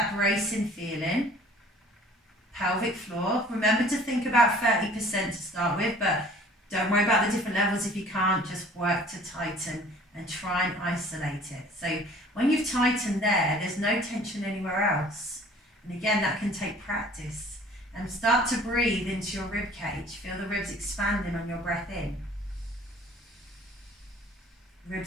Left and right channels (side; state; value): both; normal; correlation 0.51